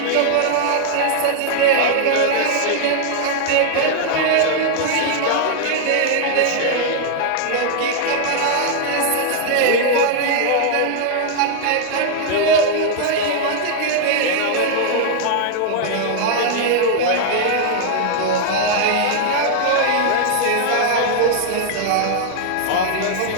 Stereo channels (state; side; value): different; both; correlation -0.01